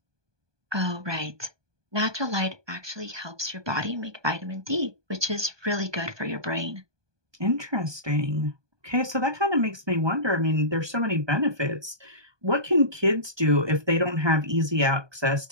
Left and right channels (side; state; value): left; late; 1.2 ms